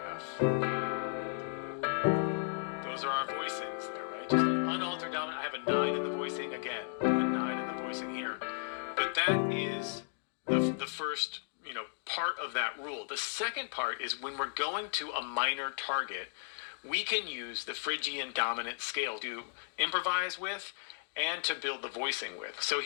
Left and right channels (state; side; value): silent; right; digital silence